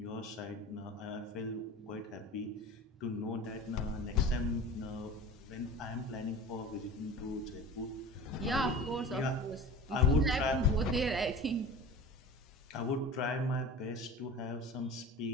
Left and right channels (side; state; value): both; normal; correlation 0.36